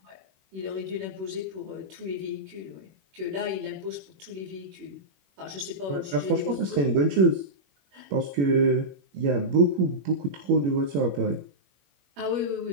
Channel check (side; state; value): left; late; 21 ms